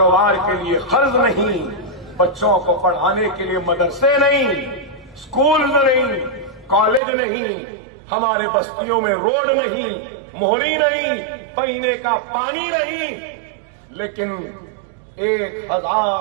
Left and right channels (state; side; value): drops out; left; at 7.0 s